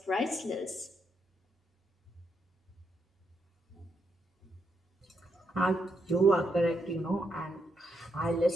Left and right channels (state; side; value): normal; both; correlation 0.79